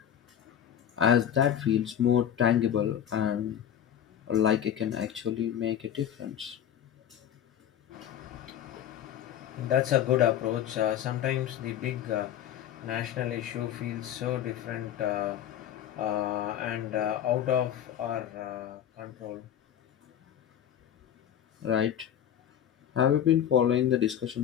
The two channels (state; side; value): quieter; right; 10.1 dB